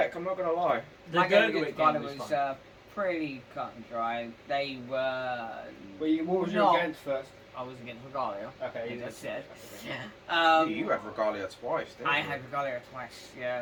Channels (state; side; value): identical; both; correlation 1.00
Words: I'm not gonna lie. The my game Gurgrit against Ghana game was was fun. pretty cut and dry. They were. What was you No. against first? I was against Regalia. Okay, As I said. You had Regalia twice, didn't I you? had Regalia twice,